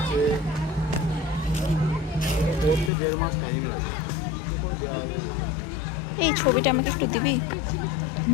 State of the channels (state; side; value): drops out; right; at 2.9 s